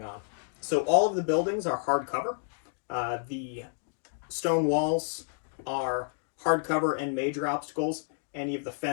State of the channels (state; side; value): silent; right; digital silence